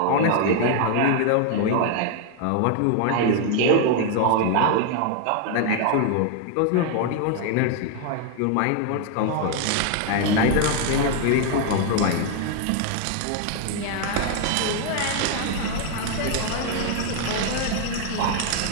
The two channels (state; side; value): different; both; correlation 0.00